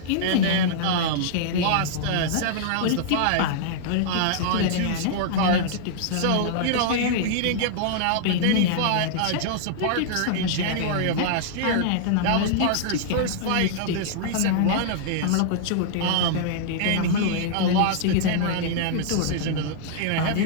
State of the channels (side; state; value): both; different; correlation -0.01